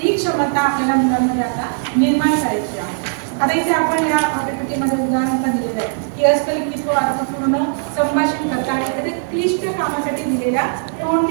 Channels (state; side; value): silent; left; digital silence